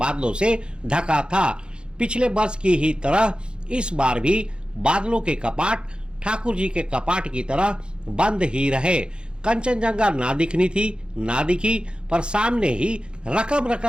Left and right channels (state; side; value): late; left; 0.052 ms